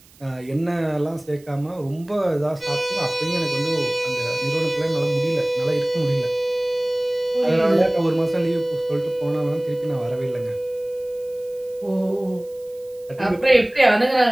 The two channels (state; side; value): noise; right; hiss, 27 dB below the sound